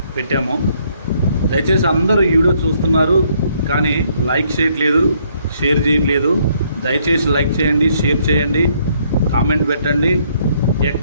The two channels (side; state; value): both; inverted; correlation -0.68